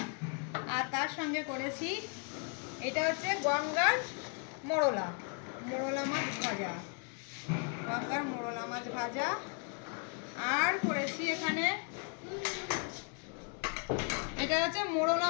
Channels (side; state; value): right; quieter; 38.8 dB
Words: আর তার সঙ্গে করেছি এটা হচ্ছে গঙ্গার মোরলা মাছ ভাজা, গঙ্গার মোরলা মাছ ভাজা। আর করেছি এখানে এটা হচ্ছে মোরলা